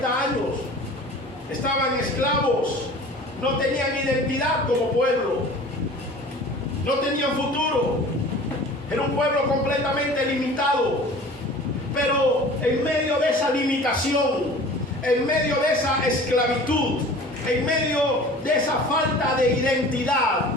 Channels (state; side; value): normal; both; correlation 0.43